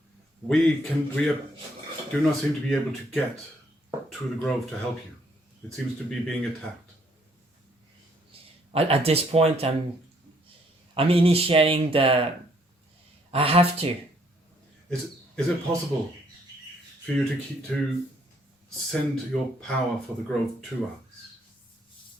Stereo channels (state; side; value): normal; both; correlation 0.67